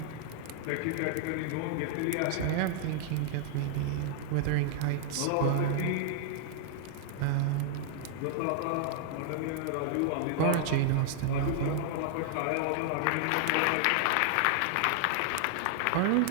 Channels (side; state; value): both; different; correlation -0.01